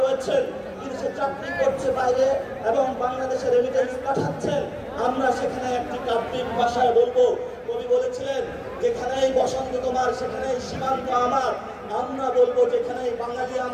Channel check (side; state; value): both; identical; correlation 1.00